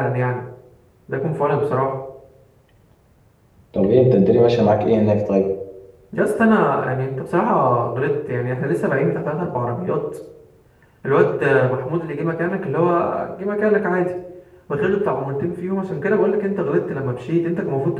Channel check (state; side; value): identical; both; correlation 1.00